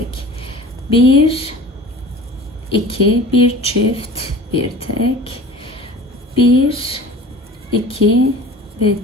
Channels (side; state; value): both; normal; correlation 0.40